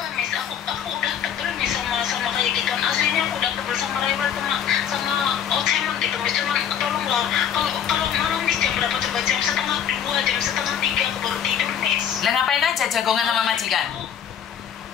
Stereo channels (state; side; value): quieter; right; 8.9 dB